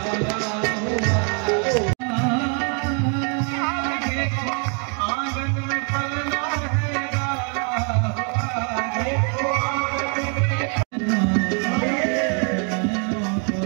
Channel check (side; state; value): left; quieter; 38.8 dB